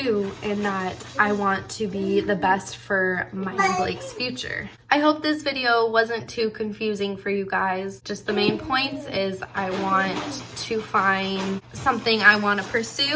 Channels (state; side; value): identical; both; correlation 1.00